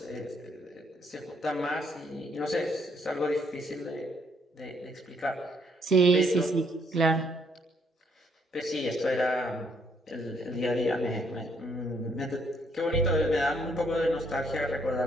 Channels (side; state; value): both; normal; correlation 0.70